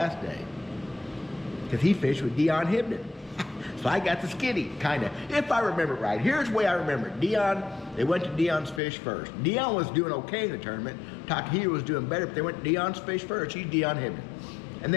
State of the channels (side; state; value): right; drops out; at 8.8 s